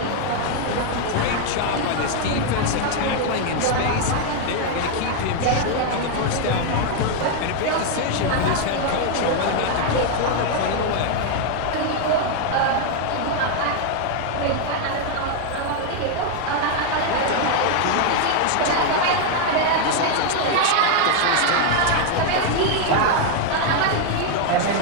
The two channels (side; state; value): both; different; correlation 0.00